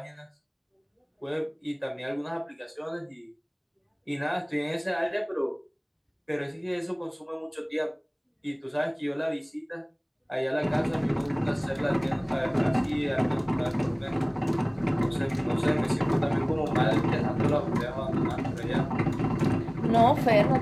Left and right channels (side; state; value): both; identical; correlation 1.00